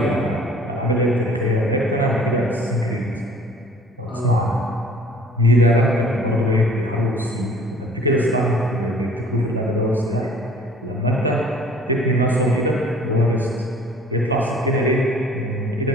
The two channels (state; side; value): normal; both; correlation 0.52